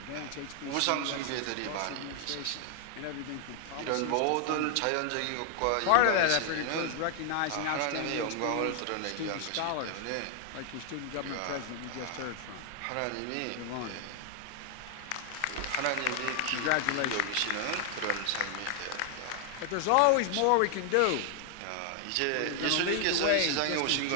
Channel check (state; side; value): different; both; correlation 0.00